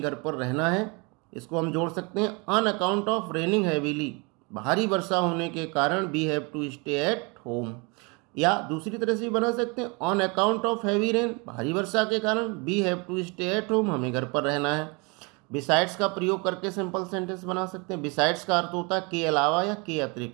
घर पर रहना है। इसको हम जोड़ सकते हैं, on account of raining heavily, भारी वर्षा होने के कारण we have to stay at home. या दूसरी तरह से भी बना सकते हैं, on account of heavy rain, भारी वर्षा के कारण we have to stay at home, हमें घर पर रहना है। बिसाइड्स का प्रयोग करके सिंपल सेंटेंस बना सकते हैं। बिसाइड्स का अर्थ होता है के अलावा या के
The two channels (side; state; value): left; quieter; 29.7 dB